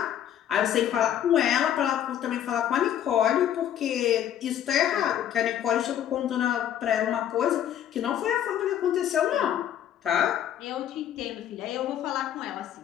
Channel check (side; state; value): right; quieter; 10.5 dB